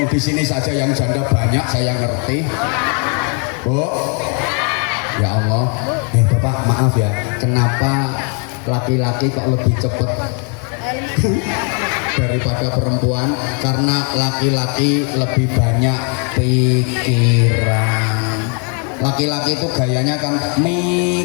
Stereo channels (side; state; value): right; quieter; 39.4 dB